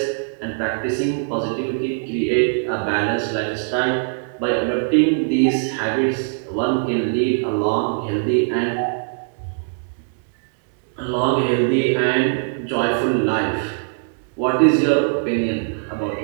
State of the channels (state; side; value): silent; left; digital silence